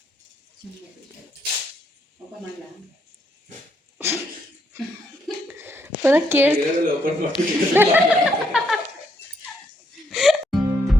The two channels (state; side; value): normal; both; correlation 0.74